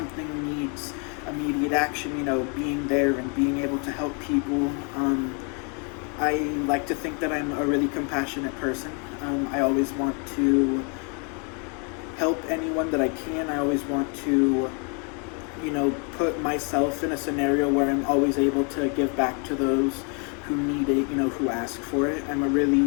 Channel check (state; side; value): quieter; right; 36.6 dB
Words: needs immediate action, being there and being able to help people. I like to think that I'm a really compassionate person. I always want to help anyone that I can. I always want to, put myself in a scenario where I'm always able to give back to those who need it, who ask for it. I'm a